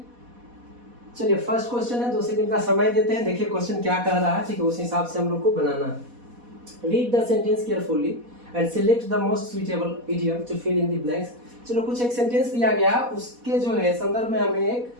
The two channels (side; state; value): left; late; 4.1 ms